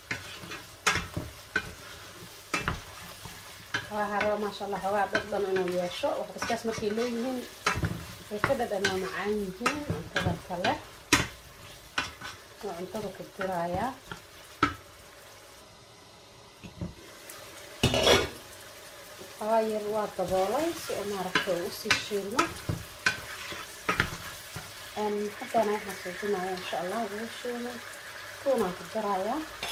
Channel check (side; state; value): both; identical; correlation 1.00